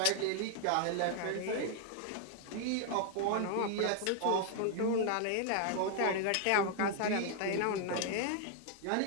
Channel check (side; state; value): both; different; correlation 0.00